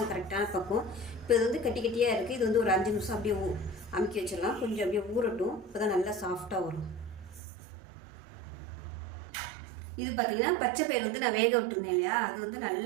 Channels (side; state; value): left; drops out; at 7.4 s